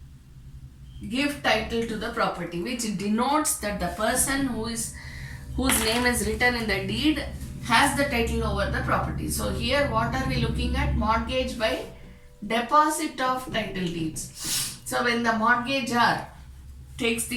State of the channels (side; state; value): both; identical; correlation 1.00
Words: give title to the property, which denotes that the person whose name is written in the deed has the title over the property. So here what are we looking at? Mortgage by deposit of title deeds. So when the mortgagor takes